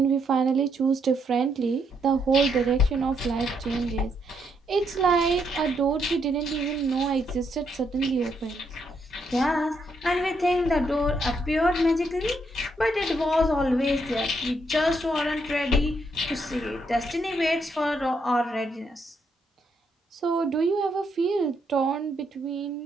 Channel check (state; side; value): normal; both; correlation 0.76